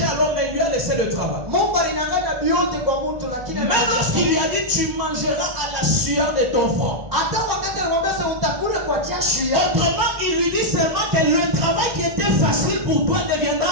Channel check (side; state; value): left; late; 1.9 ms